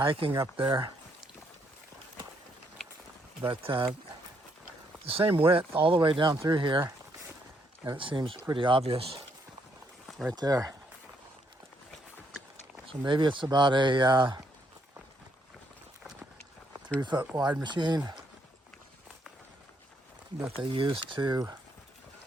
up there. But the same width all the way down through here, and it seems pretty obvious right there. So maybe it's about a 3-foot wide machine that they use to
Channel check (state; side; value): normal; both; correlation 0.73